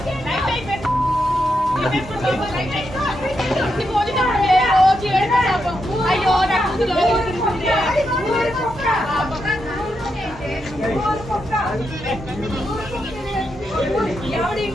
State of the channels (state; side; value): normal; both; correlation 0.83